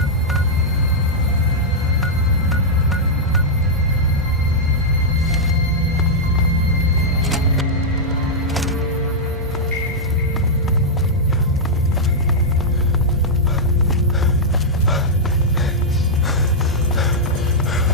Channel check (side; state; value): both; normal; correlation -0.07